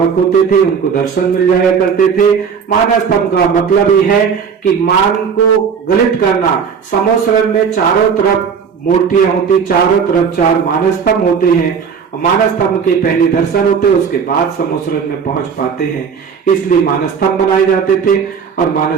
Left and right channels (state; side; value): quieter; left; 6.5 dB